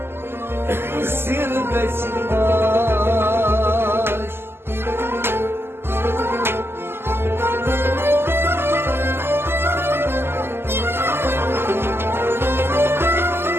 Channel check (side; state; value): left; late; 0.12 ms